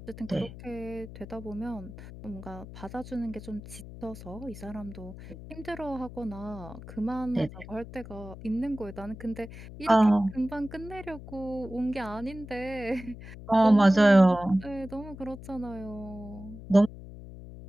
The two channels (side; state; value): left; noise; hum, 14 dB below the sound